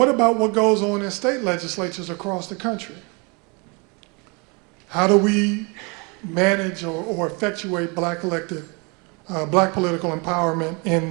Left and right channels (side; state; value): left; quieter; 30.8 dB